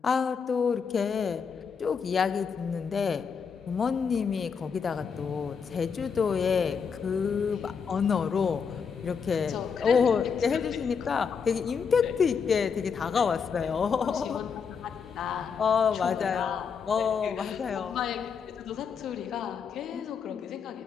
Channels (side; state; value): right; quieter; 6.2 dB